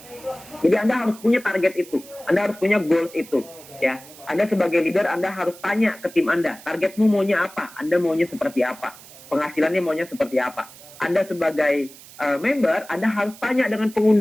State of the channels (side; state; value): right; noise; hiss, 20 dB below the sound